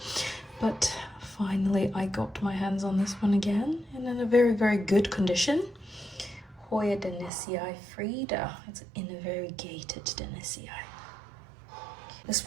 But finally I got my hands on this one again and in a very, very good condition. Hoya dennisii frida. It's in a variegated dennisii. This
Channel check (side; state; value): left; drops out; at 7.3 s